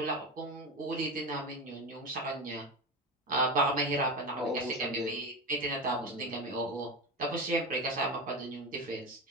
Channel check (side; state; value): both; normal; correlation 0.20